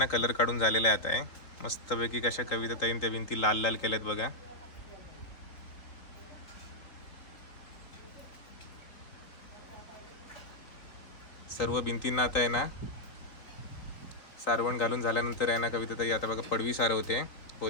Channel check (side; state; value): right; late; 4.1 ms